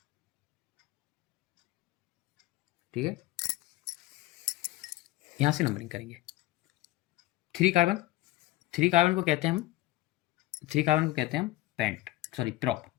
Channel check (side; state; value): right; quieter; 17.4 dB